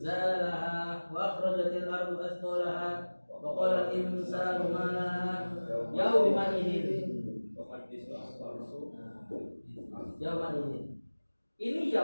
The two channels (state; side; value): inverted; both; correlation -1.00